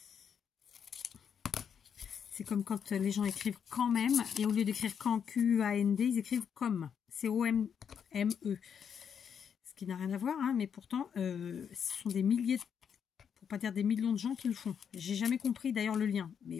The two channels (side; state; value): right; quieter; 7.6 dB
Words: C'est comme quand les gens écrivent quand même, et au lieu d'écrire quand, Q-A-N-D, ils écrivent comme, C-O-M-M-E. Ce qui n'a rien à voir, hein, mais pourtant, ce sont des milliers, pour pas dire des millions de gens qui le font. J'ai jamais compris d'ailleurs le lien,